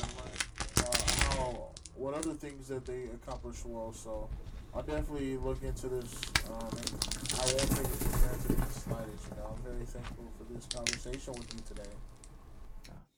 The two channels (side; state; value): both; identical; correlation 1.00